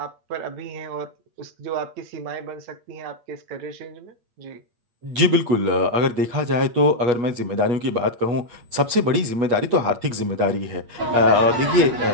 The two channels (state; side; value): late; left; 8.2 ms